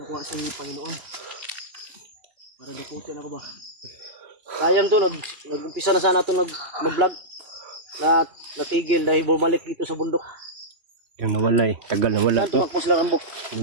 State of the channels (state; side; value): late; left; 2.9 ms